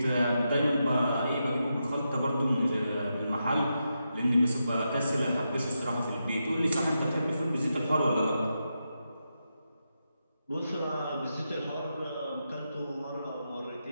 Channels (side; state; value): both; inverted; correlation -0.86